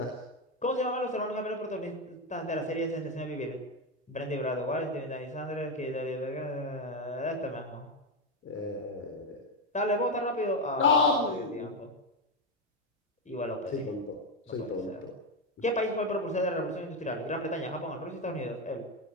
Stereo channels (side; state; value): both; normal; correlation 0.09